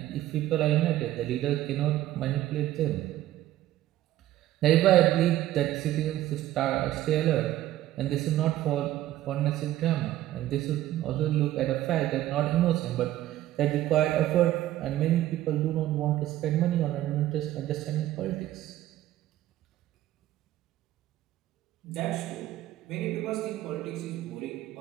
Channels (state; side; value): quieter; left; 14.1 dB